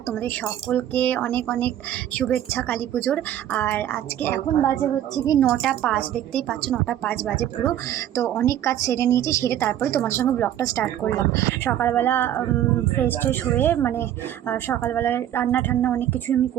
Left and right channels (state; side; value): quieter; left; 11.4 dB